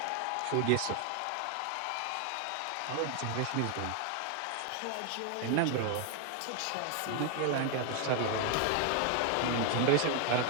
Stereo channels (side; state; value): both; different; correlation 0.00